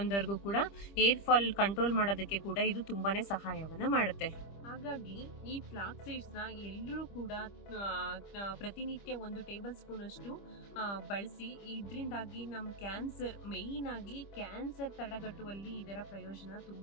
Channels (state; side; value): late; right; 25 ms